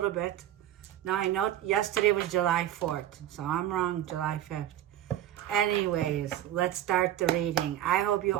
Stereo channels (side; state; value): left; quieter; 12.0 dB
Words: bit. Now, I know yesterday was July 4th, so I'm wrong, July 5th. Anyways, let's start the reading. I hope you